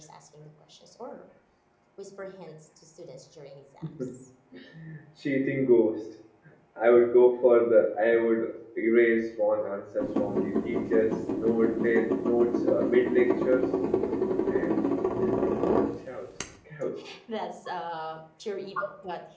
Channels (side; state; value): both; identical; correlation 1.00